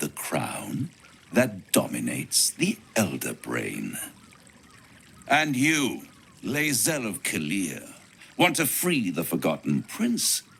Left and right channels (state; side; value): identical; both; correlation 1.00